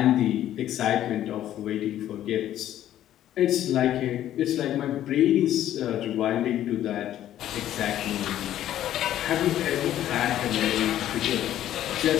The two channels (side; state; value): right; quieter; 12.1 dB